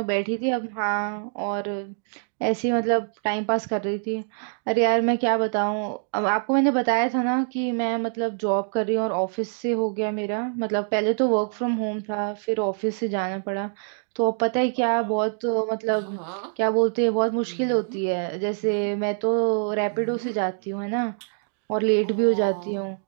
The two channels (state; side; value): silent; left; digital silence